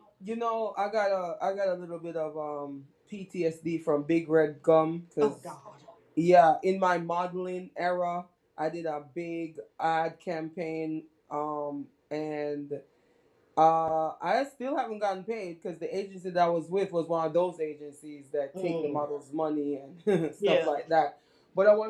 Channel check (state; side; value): identical; both; correlation 1.00